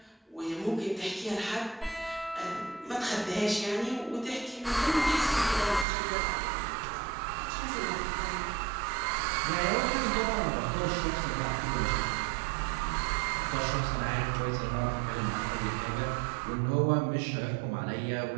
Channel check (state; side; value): drops out; left; at 5.9 s